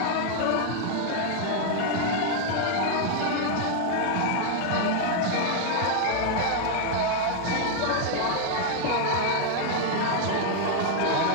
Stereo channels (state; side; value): different; both; correlation 0.00